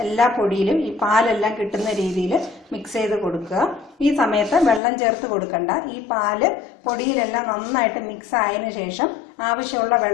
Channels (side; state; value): right; drops out; at 4.8 s